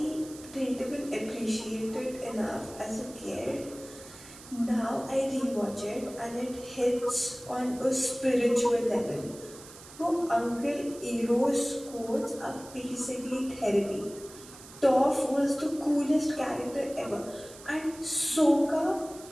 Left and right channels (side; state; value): right; noise; hiss, 18 dB below the sound